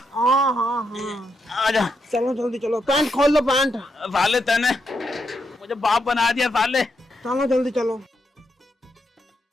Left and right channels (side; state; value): both; normal; correlation 0.81